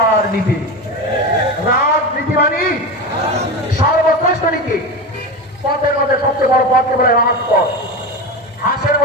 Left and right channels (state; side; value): normal; both; correlation 0.21